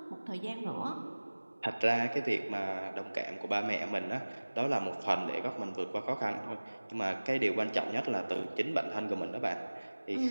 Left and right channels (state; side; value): inverted; both; correlation -1.00